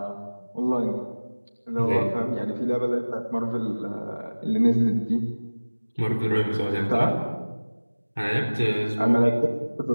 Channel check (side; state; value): both; inverted; correlation -1.00